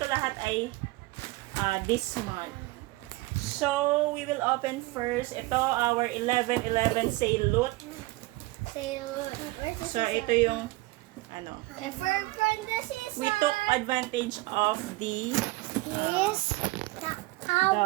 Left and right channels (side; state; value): left; quieter; 21.3 dB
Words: lahat ay this month. So, we will open first. Ito, our 11/11 sale loot. So, ito yung from the season. we took advantage of the